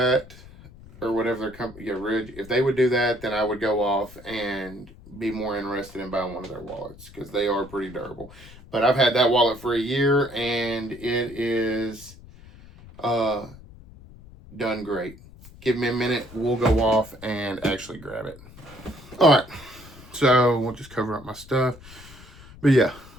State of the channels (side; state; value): left; noise; rumble, 20 dB below the sound